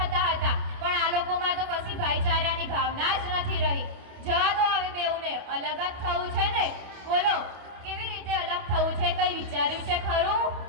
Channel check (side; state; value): left; late; 28 ms